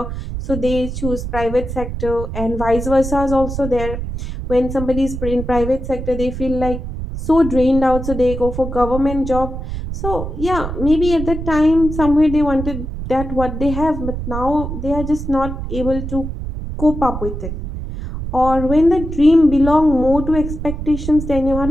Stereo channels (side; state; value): right; noise; rumble, 6 dB below the sound